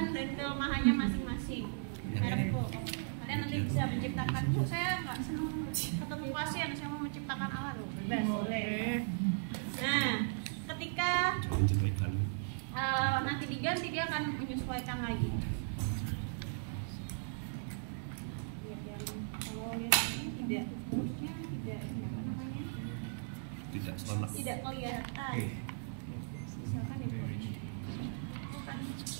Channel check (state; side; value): silent; left; digital silence